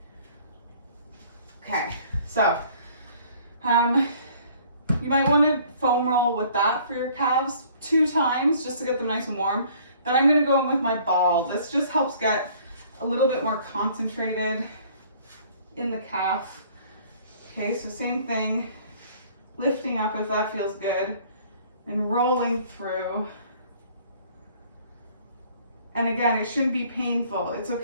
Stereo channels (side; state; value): both; inverted; correlation -0.56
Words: Okay, so you might want to foam roll with that for your calves 2 times just to get them nice and warm. Then I'm going to go in with my ball. This just helps get a little bit more concentrated in the calf. Okay, so same thing, lifting up if that feels good, and rolling through. And again, it shouldn't be painful. It's